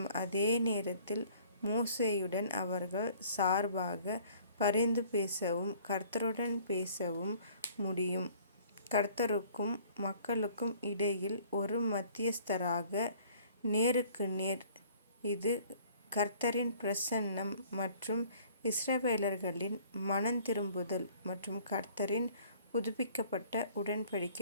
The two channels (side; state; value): both; inverted; correlation -0.55